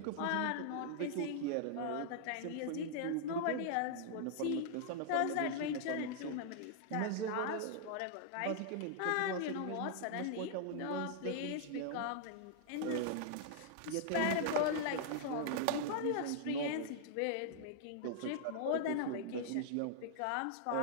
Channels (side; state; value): both; different; correlation -0.01